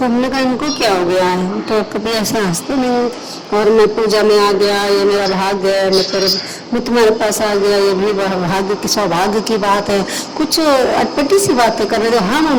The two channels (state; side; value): identical; both; correlation 1.00